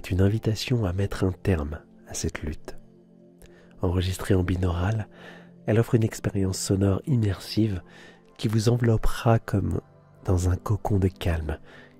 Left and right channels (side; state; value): both; identical; correlation 1.00